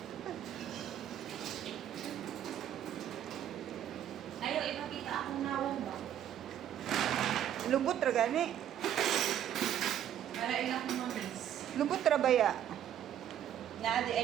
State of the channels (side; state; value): left; quieter; 10.5 dB